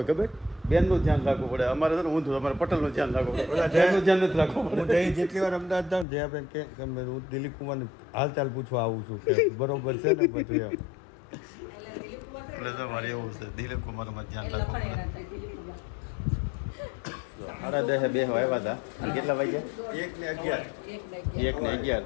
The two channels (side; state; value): right; drops out; at 6.1 s